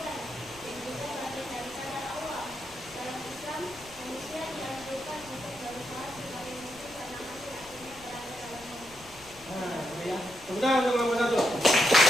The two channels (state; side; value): noise; left; rumble, 21 dB below the sound